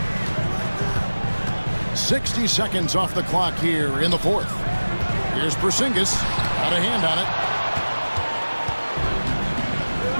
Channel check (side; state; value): both; inverted; correlation -1.00